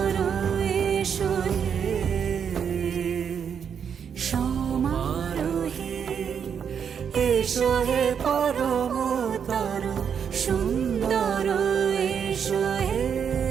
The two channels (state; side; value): quieter; left; 7.5 dB